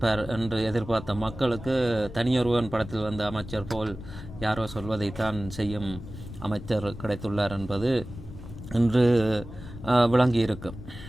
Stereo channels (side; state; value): left; noise; rumble, 13 dB below the sound